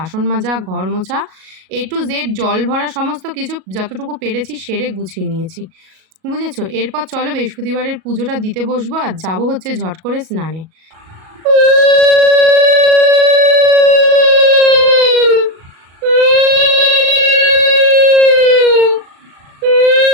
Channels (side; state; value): left; late; 37 ms